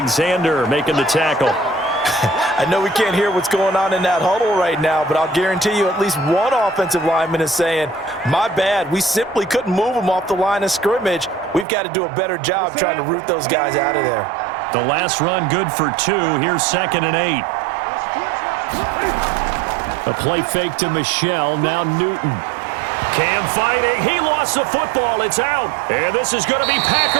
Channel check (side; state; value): left; drops out; at 11.7 s